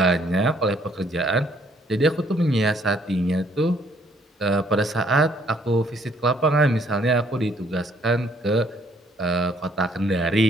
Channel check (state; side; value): normal; both; correlation 0.65